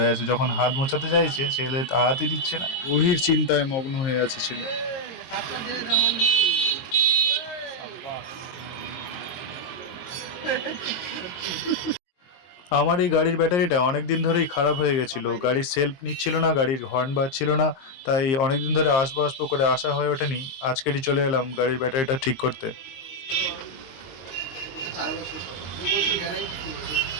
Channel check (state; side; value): late; right; 23 ms